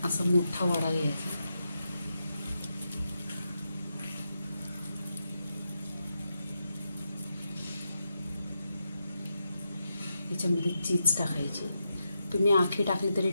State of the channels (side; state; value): both; inverted; correlation -0.85